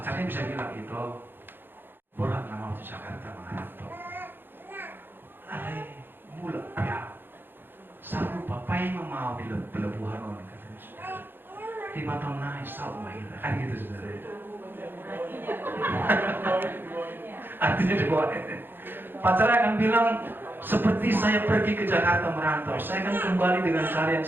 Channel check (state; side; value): late; left; 0.099 ms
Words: bisa bilang itu, borak nama waktu Jakarta mengantar. Ale mula ya. Saru papai mau di pelabuhan orang katanya, saudara. 5 tahun naik saru mahir kan gitu, saudara. Artinya dibawa. Pacarnya akan bilang, seperti saya pergi ke Jakarta merantau, saya akan kembali dengan cara yang